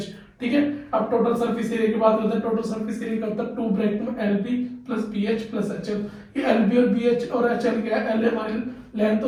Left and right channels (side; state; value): both; identical; correlation 1.00